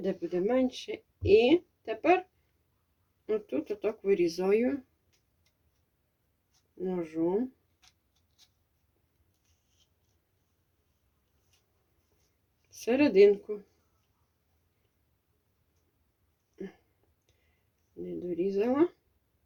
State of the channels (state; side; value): identical; both; correlation 1.00